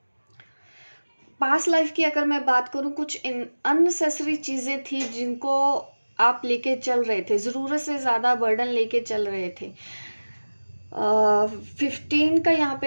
पास्ट लाइफ की अगर मैं बात करूं, कुछ अननेसेसरी चीज़ें थी जिनको आप लेके चल रहे थे, ज़रूरत से ज़्यादा बर्डन लेके चल रहे थे। 15 का यहाँ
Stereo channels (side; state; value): both; inverted; correlation -1.00